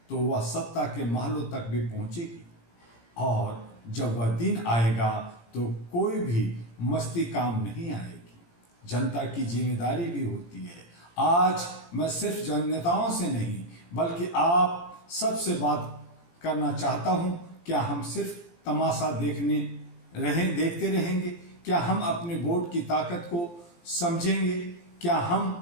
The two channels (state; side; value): late; right; 17 ms